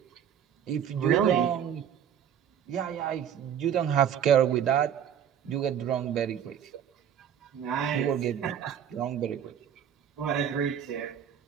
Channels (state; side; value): quieter; left; 9.0 dB